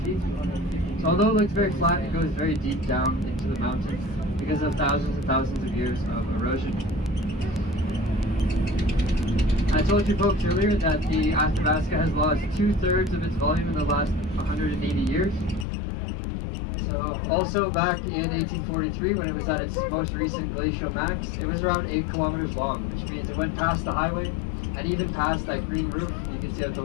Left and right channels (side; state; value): right; drops out; at 15.7 s